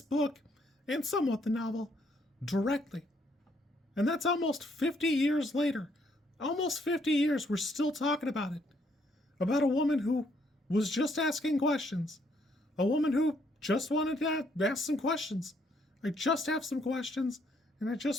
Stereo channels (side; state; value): both; normal; correlation 0.71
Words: book, and somewhat the novel, directly. And that's almost 50 years later. Almost 50 years, we're still talking about it. About a woman who was just asking questions. A woman who just wanted to ask some questions. I just have some questions, and I